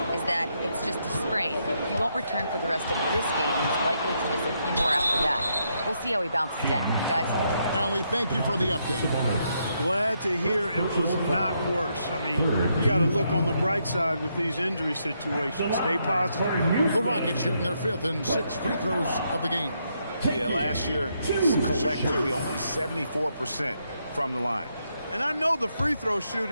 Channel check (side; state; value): both; inverted; correlation -0.78